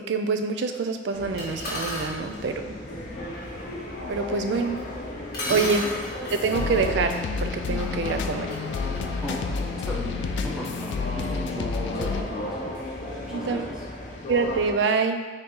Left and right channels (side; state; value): both; normal; correlation 0.16